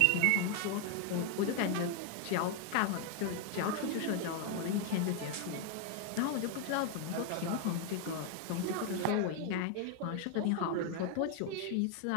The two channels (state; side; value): different; both; correlation 0.00